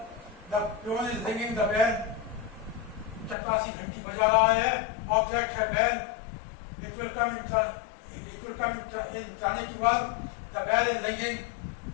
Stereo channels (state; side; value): drops out; right; at 3.4 s